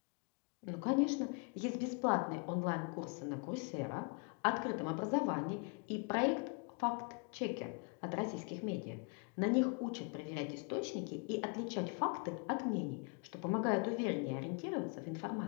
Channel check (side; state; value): right; quieter; 37.0 dB